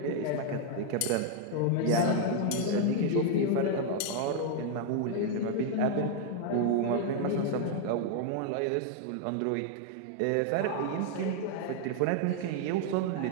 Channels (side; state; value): both; different; correlation 0.00